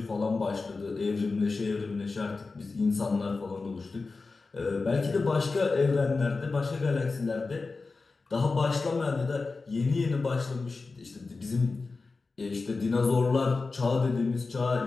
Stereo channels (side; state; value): right; quieter; 4.0 dB